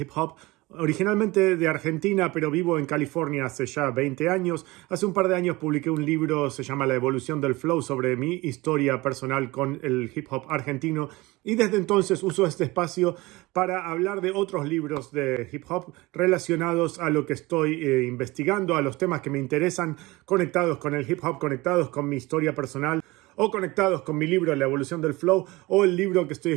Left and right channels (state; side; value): quieter; left; 21.5 dB